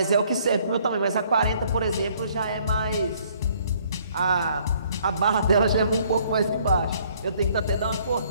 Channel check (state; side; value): inverted; both; correlation -0.63